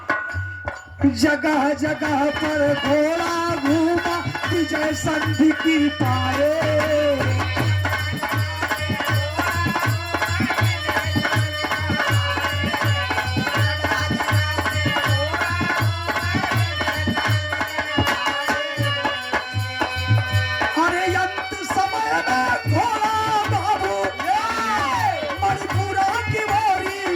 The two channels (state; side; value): identical; both; correlation 1.00